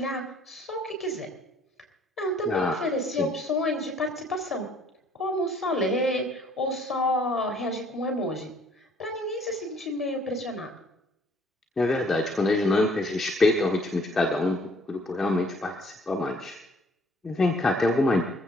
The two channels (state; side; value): normal; both; correlation 0.60